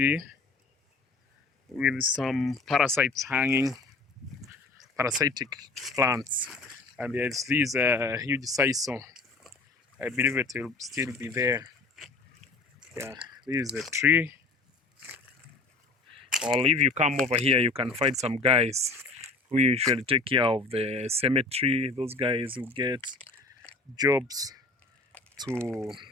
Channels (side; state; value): right; quieter; 3.5 dB